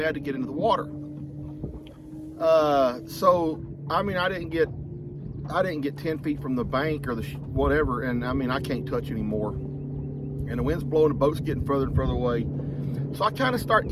to get into the water. So, I mean, I didn't get 10 feet from the bank or the whatever, and I mean, I can't touch anymore. And the wind's blowing, the boat's getting further and further away. So I kind of start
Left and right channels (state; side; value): identical; both; correlation 1.00